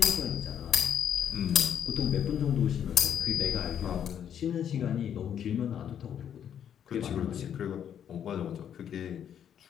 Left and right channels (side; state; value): right; quieter; 9.1 dB